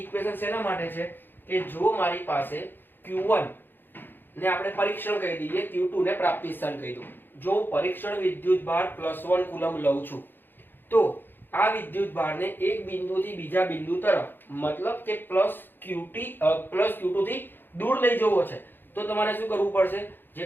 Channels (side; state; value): right; late; 0.097 ms